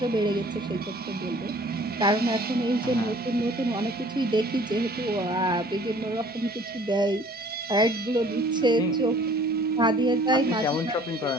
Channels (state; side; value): normal; both; correlation 0.53